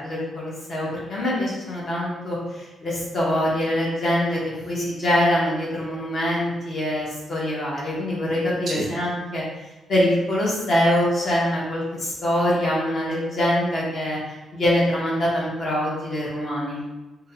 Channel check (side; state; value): both; normal; correlation 0.79